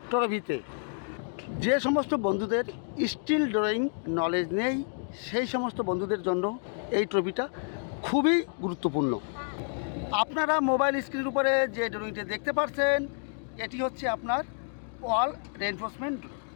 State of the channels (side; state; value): right; silent; 58 dB below the other